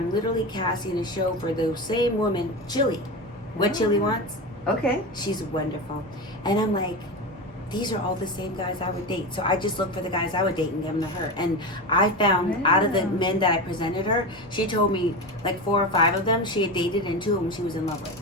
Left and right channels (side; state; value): both; normal; correlation 0.22